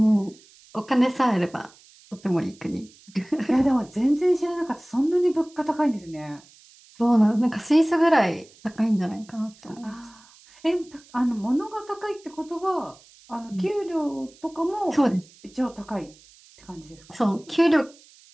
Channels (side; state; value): right; noise; hiss, 26 dB below the sound